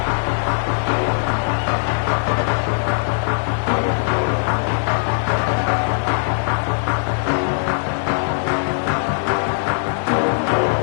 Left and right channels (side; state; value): right; silent; 65 dB below the other